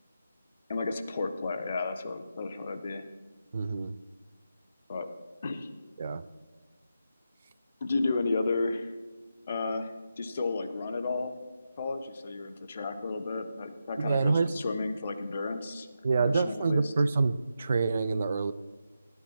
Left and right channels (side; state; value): both; inverted; correlation -0.86